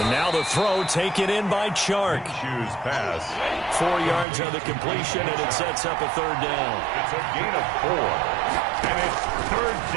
now the throw taken in by Chark. Shoes pass. 4 yards on the completion, and it sets up a 3rd down. It's a gain of 4. And it's 3rd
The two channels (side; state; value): left; drops out; at 4.2 s